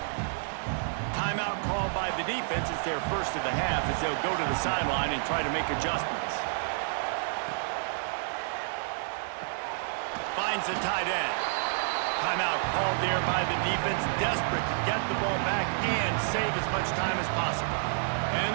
Timeout called by the defense. It's their first of the half as they'll go to the sideline and try to make adjustments. Finds the tight end. Timeout called there by the defense, desperate to get the ball back and save as much time as possible. And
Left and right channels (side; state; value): left; silent; digital silence